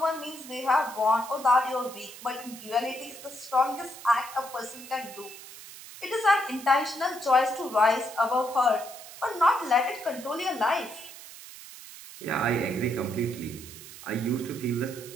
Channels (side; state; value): right; noise; hiss, 15 dB below the sound